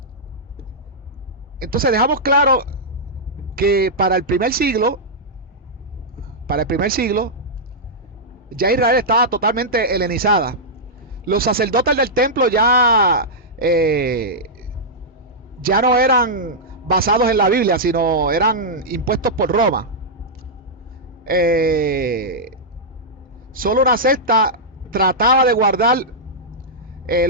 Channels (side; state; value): both; normal; correlation -0.09